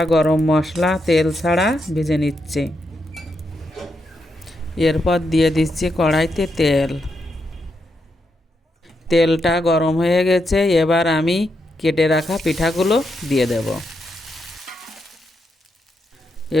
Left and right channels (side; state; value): both; normal; correlation 0.82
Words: গরম মশলা তেল ছাড়া ভেজে নিচ্ছি। এরপর দিয়ে দিচ্ছি কড়াইতে তেল। তেলটা গরম হয়ে গেছে, এবার আমি কেটে রাখা পিঠাগুলো দিয়ে দেব।